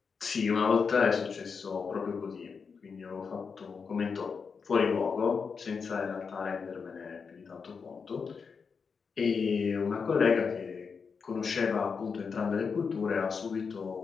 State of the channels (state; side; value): quieter; right; 5.6 dB